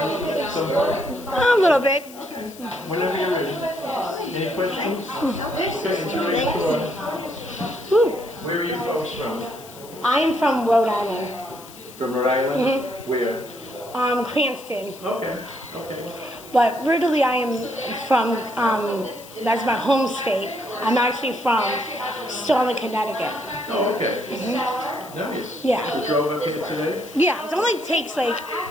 A little bit. Whenever you're ready. Any questions? Okay, enjoy your tour. Where are you folks from? I am from Rhode Island. From Rhode Island? Where? Cranston. Okay. But originally I am from, that's my home state. I'm actually from Sterling, Connecticut. Oh, okay. Nice. Yeah. You drove up here today? Yeah, it only takes like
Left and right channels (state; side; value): noise; left; hiss, 19 dB below the sound